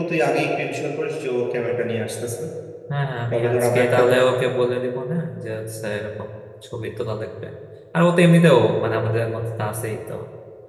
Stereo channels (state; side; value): identical; both; correlation 1.00